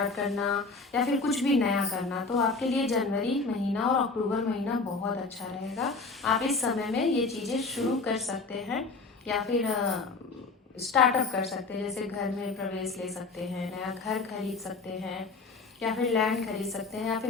करना, या फिर कुछ भी नया करना, तो आपके लिए जनवरी महीना और अक्टूबर महीना बहुत अच्छा रहेगा। आप इस समय में ये चीज़ें शुरू कर सकते हैं या फिर स्टार्टअप कर सकते हैं। जैसे घर में प्रवेश ले सकते हैं, नया घर खरीद सकते हैं, या फिर लैंड खरीद सकते हैं, या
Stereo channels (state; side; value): quieter; right; 4.0 dB